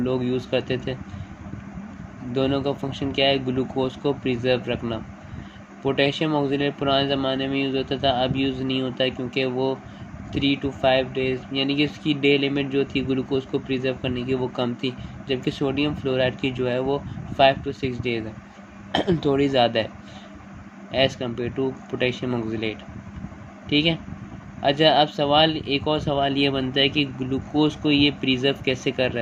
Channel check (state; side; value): identical; both; correlation 1.00